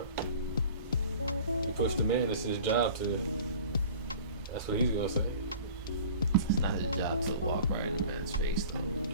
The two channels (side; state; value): both; inverted; correlation -0.44